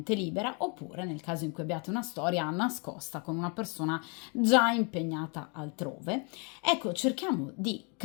libera, oppure nel caso in cui abbiate una storia nascosta con una persona già impegnata altrove. Ecco, cerchiamo di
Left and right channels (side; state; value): right; quieter; 34.5 dB